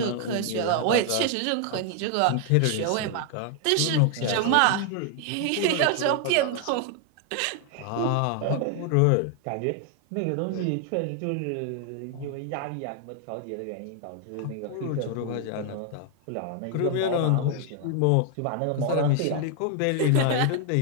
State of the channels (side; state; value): both; different; correlation 0.00